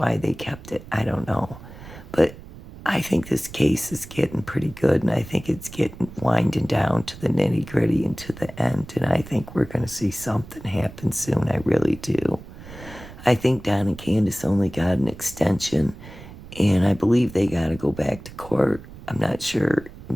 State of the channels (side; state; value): right; noise; rumble, 16 dB below the sound